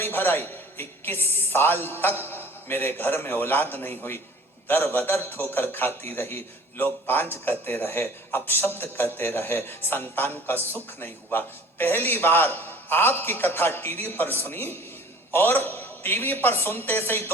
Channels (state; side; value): normal; both; correlation 0.48